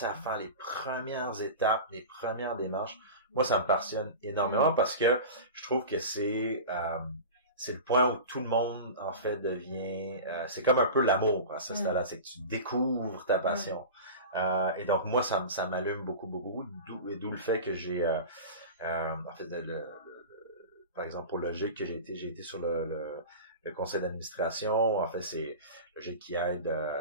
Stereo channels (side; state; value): both; inverted; correlation -0.31